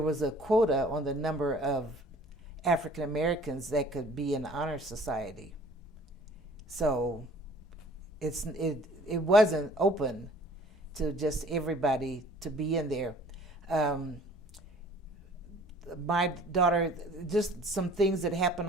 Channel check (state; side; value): normal; both; correlation 0.52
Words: was a quota on the number of African Americans that could be in honor society. So it wasn't open to just everybody to be in there. My daughter, just some things that